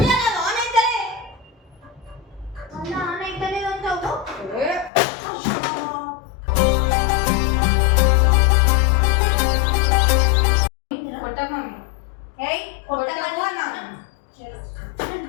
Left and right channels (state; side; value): drops out; right; at 4.9 s